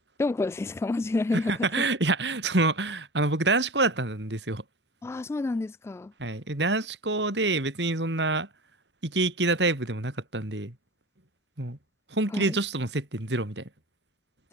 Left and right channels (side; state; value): both; normal; correlation 0.34